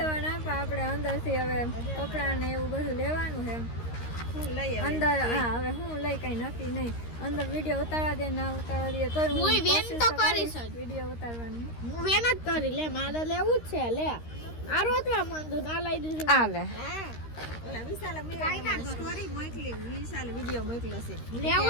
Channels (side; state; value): right; late; 13 ms